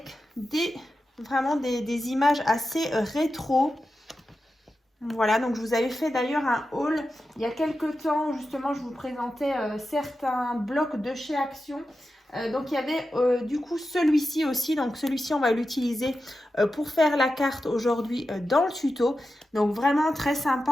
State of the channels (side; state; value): both; normal; correlation 0.91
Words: vraiment des images assez rétro. Voilà, donc je vous avais fait d'ailleurs un haul il y a quelques temps, justement je vous présentais certains blocs de chez Action. Donc il y avait du coup celui-ci aussi, donc celui-ci on va l'utiliser pour faire la carte aujourd'hui dans le tuto. Donc vraiment très